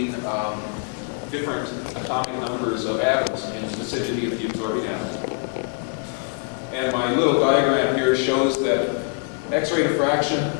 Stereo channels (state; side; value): quieter; right; 39.7 dB